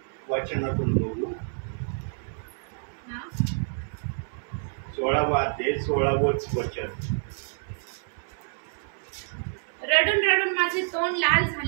वचनातून बघू. 16वा अध्याय 16वंच वचन. रडून रडून माझे तोंड लाल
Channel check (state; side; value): silent; left; 59 dB below the other